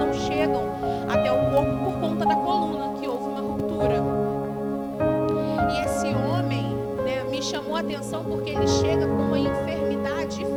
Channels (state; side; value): identical; both; correlation 1.00